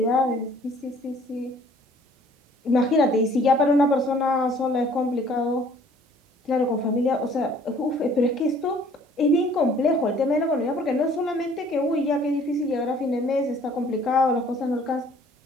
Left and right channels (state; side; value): normal; both; correlation 0.56